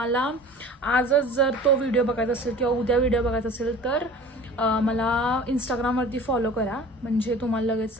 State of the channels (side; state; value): both; normal; correlation 0.43